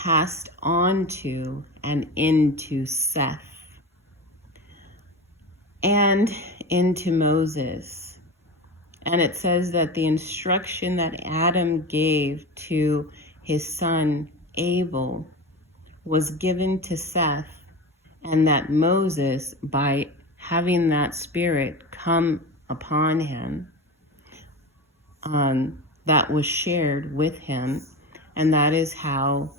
on to and into Seth and into Moses. And it says that the instruction that Adam gave to his son Abel was given to Seth, and that Moses, by having that spirit come upon him, that was shared with him, and that is how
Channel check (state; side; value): normal; both; correlation 0.26